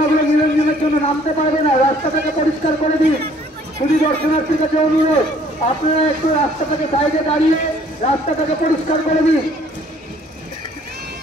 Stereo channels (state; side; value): normal; both; correlation 0.59